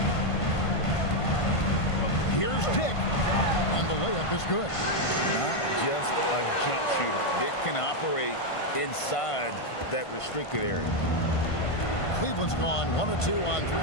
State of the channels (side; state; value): right; late; 1.5 ms